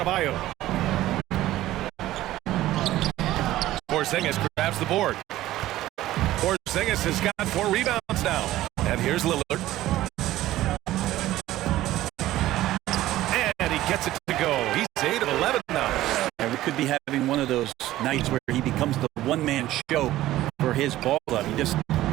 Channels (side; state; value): left; quieter; 15.1 dB